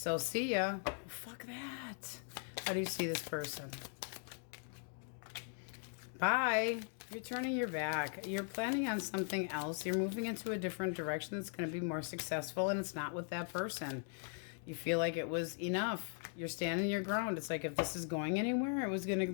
see ya. Fuck that. How do you see this person? Bye. You're turning your back. You're planning on something else. You're moving into a different direction that's going to be more successful, and it's not with that person. You feel like it was enough. You're standing your ground. It's like if this is going anywhere, it was going to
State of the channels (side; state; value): right; silent; 51 dB below the other